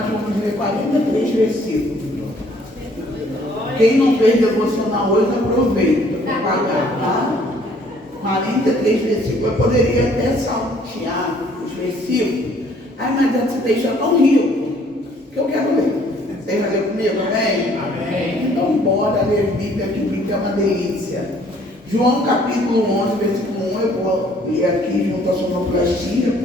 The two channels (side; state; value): both; normal; correlation 0.60